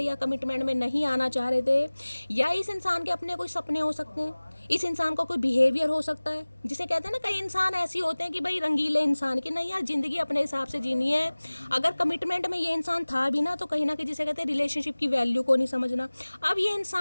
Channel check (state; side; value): inverted; both; correlation -1.00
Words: कमिटमेंट में नहीं आना चाह रहे थे, या इस इंसान के अपने कोई सपने हो सकते हैं, इस इंसान का कोई बिहेवियर हो सकता है, जिसे कहते हैं ना, कई इंसान ऐसे होते हैं कि भाई रंगीले इंसान की, नहीं यार जिंदगी अपने हिसाब से जीनी है। अगर कमिटमेंट में ये इंसान था भी ना, तो कहीं ना कहीं जिसे कहते हैं रिलेशनशिप की वैल्यू को नहीं समझना। अब ये